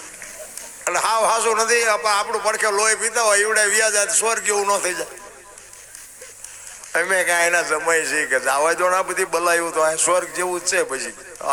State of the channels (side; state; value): both; identical; correlation 1.00